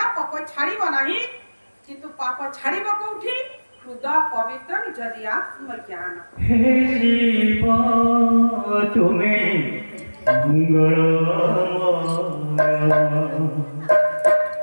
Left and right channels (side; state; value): both; inverted; correlation -1.00